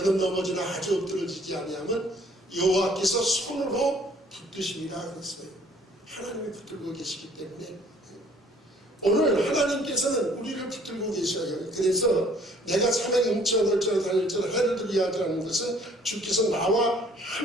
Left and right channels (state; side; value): normal; both; correlation 0.57